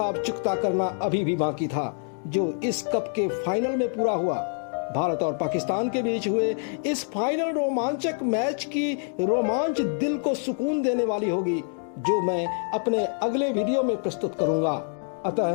चुकता करना अभी भी बाकी था, जो इस कप के फाइनल में पूरा हुआ। भारत और पाकिस्तान के बीच हुए इस फाइनल रोमांचक मैच की रोमांच दिल को सुकून देने वाली होगी, जो मैं अपने अगले वीडियो में प्रस्तुत करूंगा।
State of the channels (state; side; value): silent; right; 59 dB below the other